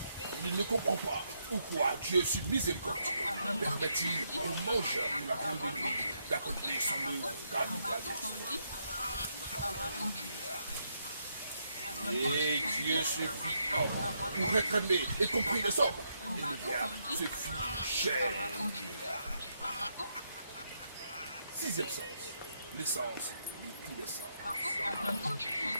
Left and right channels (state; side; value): inverted; both; correlation -0.78